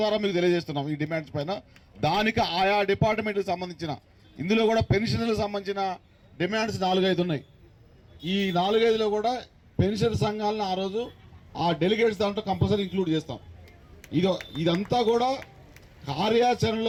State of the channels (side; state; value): both; identical; correlation 1.00